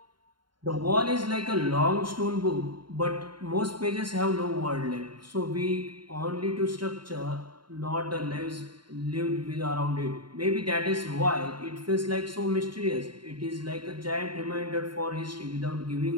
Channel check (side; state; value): left; late; 0.72 ms